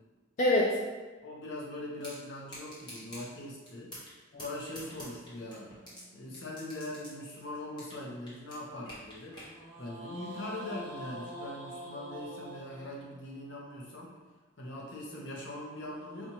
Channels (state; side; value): normal; both; correlation 0.18